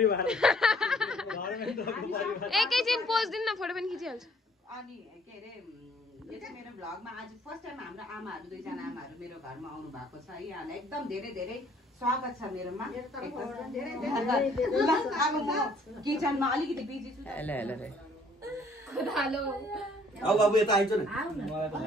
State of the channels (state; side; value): normal; both; correlation 0.60